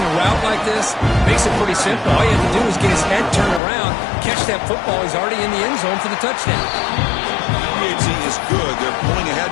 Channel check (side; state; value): right; drops out; at 3.6 s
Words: route like this, makes it pretty simple. All you have to do is get his head turned around, catch that football. He's already in the end zone for the touchdown. PAT is good. They're pulling ahead